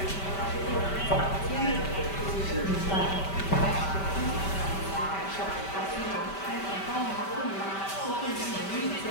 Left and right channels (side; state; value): right; late; 5.1 ms